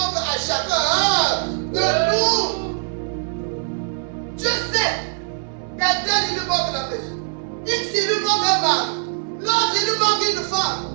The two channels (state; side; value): silent; left; digital silence